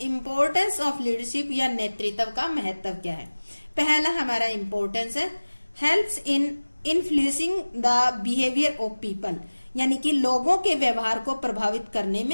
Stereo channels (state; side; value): inverted; both; correlation -1.00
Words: इम्पोर्टेंस ऑफ लीडरशिप या नेतृत्व का महत्व क्या है। पहला हमारा इम्पोर्टेंस है helps in influencing the behaviour of people, यानी कि लोगों के व्यवहार को प्रभावित करने